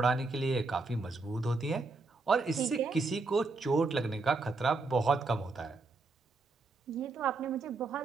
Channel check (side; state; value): left; quieter; 3.7 dB